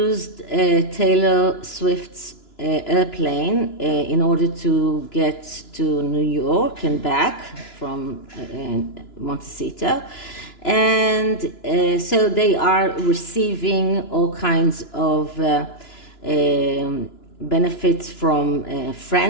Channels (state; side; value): late; right; 2.9 ms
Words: Taylor Swift's airplane in order to get to New York and back from Montecito, and so they are receiving all kinds of benefits from